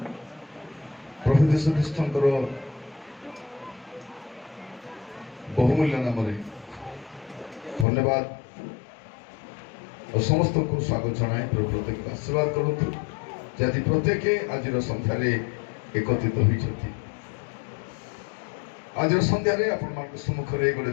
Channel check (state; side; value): drops out; right; at 7.9 s